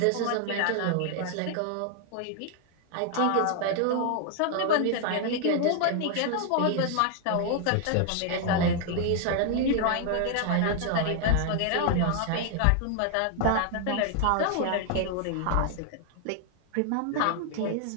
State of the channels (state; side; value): different; both; correlation 0.00